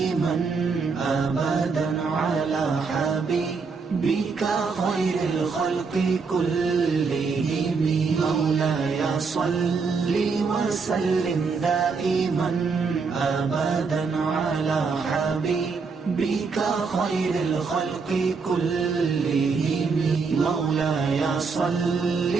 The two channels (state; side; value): quieter; left; 4.9 dB